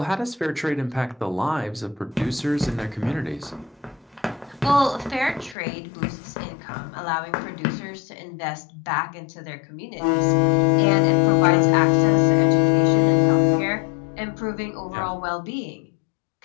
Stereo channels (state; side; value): drops out; right; at 5.6 s